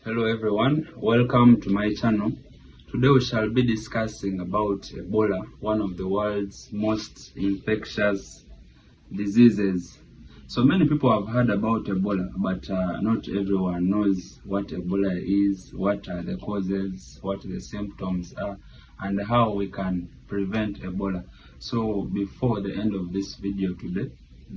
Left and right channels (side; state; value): both; identical; correlation 1.00